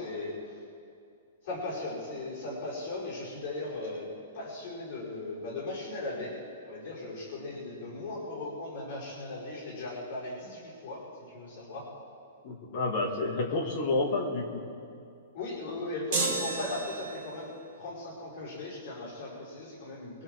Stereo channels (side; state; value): both; inverted; correlation -0.37